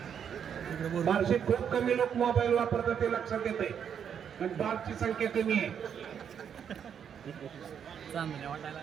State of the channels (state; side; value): quieter; left; 8.1 dB